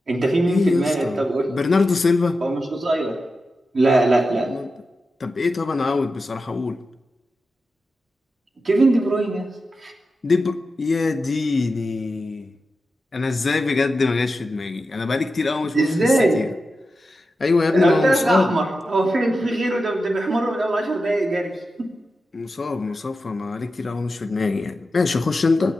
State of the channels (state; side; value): normal; both; correlation 0.91